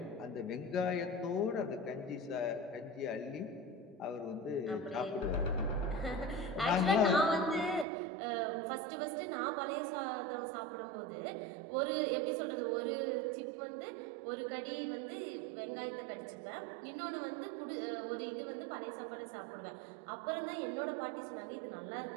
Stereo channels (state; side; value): drops out; left; at 7.9 s